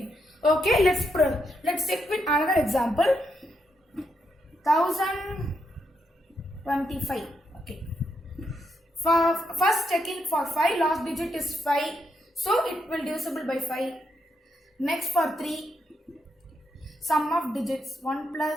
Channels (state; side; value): normal; both; correlation 0.81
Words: Okay, let's check with another example. 1025. Okay. For first checking for 5, last digit is 5. So it will divisible by 5. Next for 3. Sum of digits 1